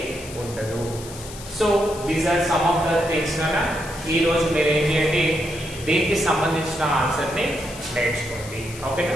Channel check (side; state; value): left; noise; hiss, 15 dB below the sound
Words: ఉండదు. So these are some of the things. ఈ రోజు మీరు ఏం చేయండి, దీనికి సంబంధించిన ఆన్సర్ ని నేర్చుకోండి. ఓకేనా,